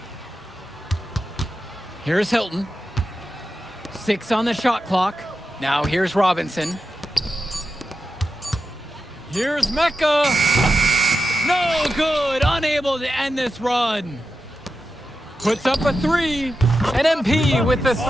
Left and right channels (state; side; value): normal; both; correlation 0.90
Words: Here's Hilton. 6 on the shot clock. Now here's Robinson. Here's Mecca. No good. Unable to end this run. Puts up a 3. And MP with the